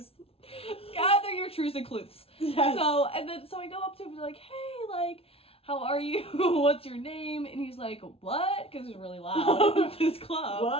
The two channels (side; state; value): right; late; 0.28 ms